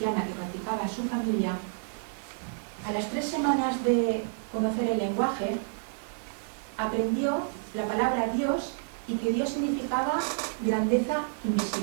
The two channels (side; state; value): left; silent; digital silence